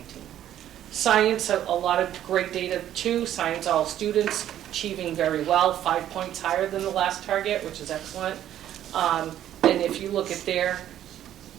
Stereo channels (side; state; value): left; quieter; 11.5 dB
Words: Science, a lot of great data too. Science, all students achieving very well, 5 points higher than the last target, which is excellent. And if you look at their